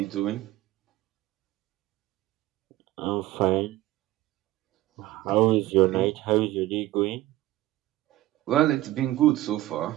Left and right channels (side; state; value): left; quieter; 16.2 dB